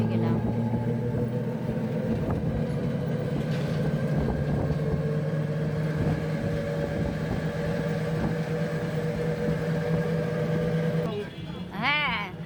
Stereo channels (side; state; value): both; identical; correlation 1.00